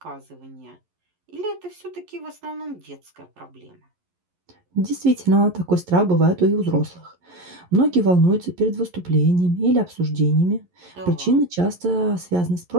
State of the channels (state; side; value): late; left; 11 ms